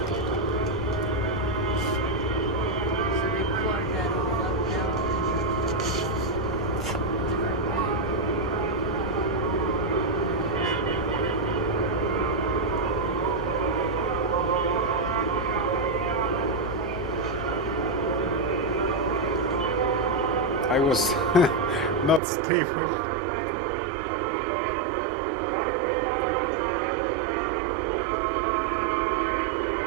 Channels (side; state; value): left; drops out; at 22.2 s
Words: I was not stable.